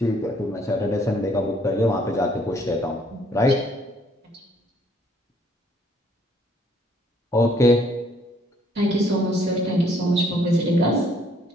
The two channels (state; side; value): normal; both; correlation 0.64